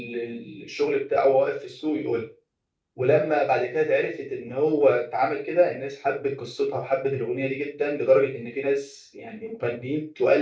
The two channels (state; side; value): identical; both; correlation 1.00